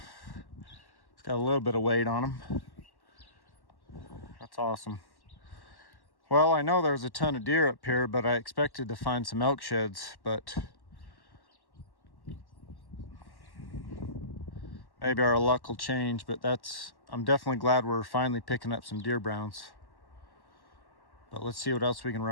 it's got a little bit of weight on him. That's awesome. Well, I know there's a ton of deer up here, but I expected to find some elk sheds, but maybe our luck will change. But I'm definitely glad we're finally picking up some deer browns. But let's see what else we can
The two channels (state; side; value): late; right; 1.1 ms